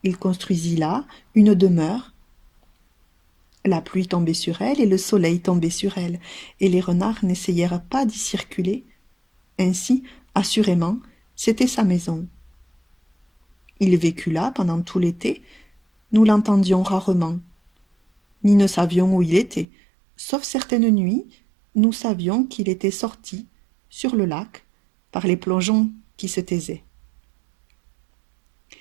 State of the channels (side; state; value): left; drops out; at 19.7 s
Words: Il construisit là une demeure. La pluie tombait sur elle et le soleil tombait sur elle, et les renards n'essayèrent pas d'y circuler. Ainsi, assurément, c'était sa maison. Il vécut là pendant tout l'été. Nous l'entendions rarement, ni ne savions où il était. Sauf certaines nuits, nous savions qu'il était sorti sur le lac par les plongeons qui se taisaient.